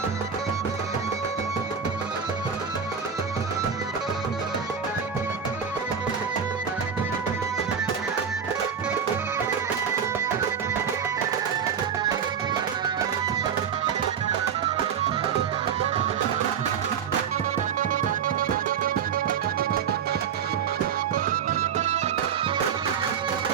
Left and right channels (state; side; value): quieter; left; 7.2 dB